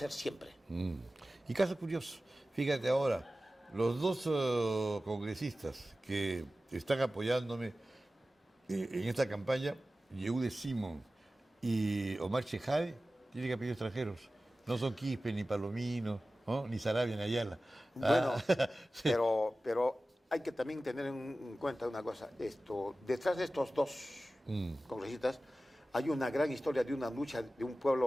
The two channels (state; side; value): normal; both; correlation 0.96